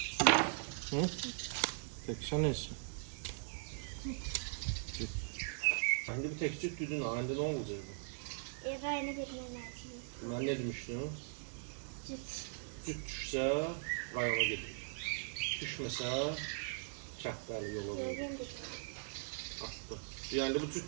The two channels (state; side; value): silent; left; digital silence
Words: Tekşen neyse. Şimdi bir tek cüt düdün halinde ne olacak bu? Rayına vermem lazım. Ben ne demiştim? Cüt. Cüt düşse rayona gelir. Düşmese çaktarlı yola verir. Attı. Yani bu